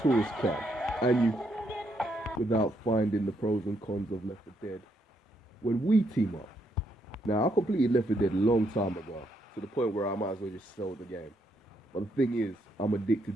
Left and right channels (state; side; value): normal; both; correlation 0.76